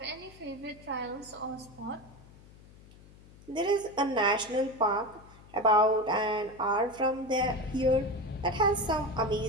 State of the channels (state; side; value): noise; left; hum, 22 dB below the sound